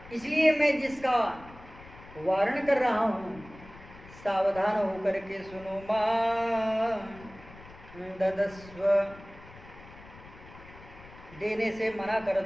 इसलिए मैं जिसका वारण कर रहा हूं, सावधान होकर के सुनो। मां ददस्व, देने से मना कर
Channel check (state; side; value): noise; left; rumble, 19 dB below the sound